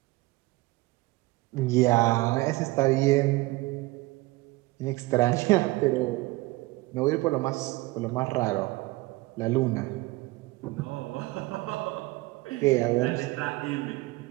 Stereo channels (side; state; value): left; quieter; 20.8 dB